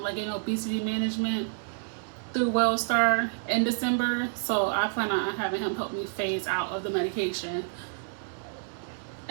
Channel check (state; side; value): silent; left; digital silence